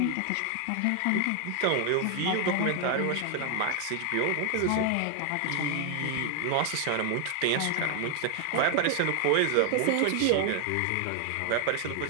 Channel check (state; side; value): different; both; correlation 0.00